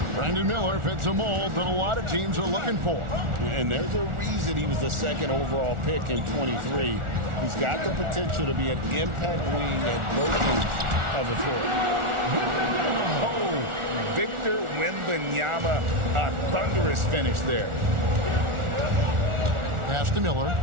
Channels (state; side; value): late; left; 1.4 ms